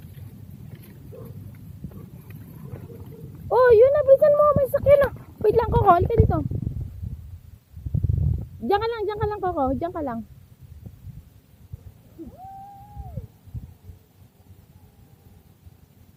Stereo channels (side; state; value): both; identical; correlation 1.00